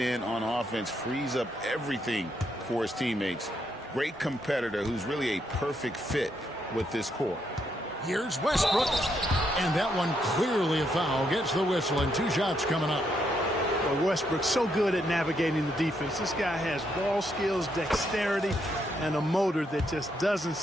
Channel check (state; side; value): normal; both; correlation 0.77